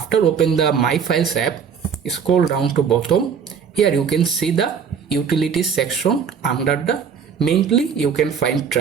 open the My Files app, scroll down to bottom. Here you can see the Utilities section. Under the Mainly you can find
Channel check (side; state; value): left; quieter; 6.9 dB